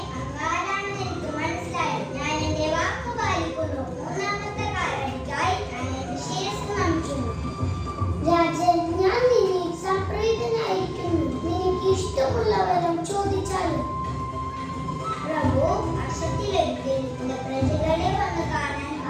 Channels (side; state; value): both; identical; correlation 1.00